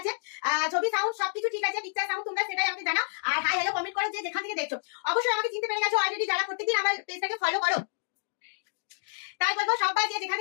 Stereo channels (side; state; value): right; silent; digital silence